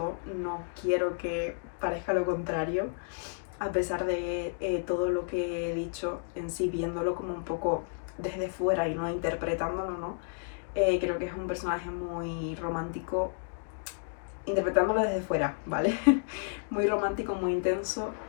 no quiero que parezca lo contrario, a pesar de todo lo que he dicho en sí, viéndolo como un poco desde fuera y no interpretándolo, ¿no? Creo que es un personaje muy romántico, interpretándolo desde fuera, ¿vale? Muy romántico, muy intenso,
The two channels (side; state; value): right; silent; digital silence